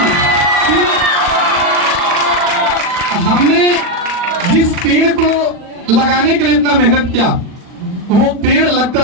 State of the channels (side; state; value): left; late; 39 ms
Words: हमने जिस पेड़ को लगाने के लिए इतना मेहनत किया, वो पेड़ लगकर